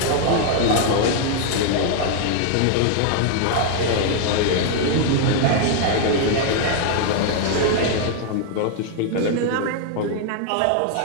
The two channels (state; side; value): different; both; correlation 0.00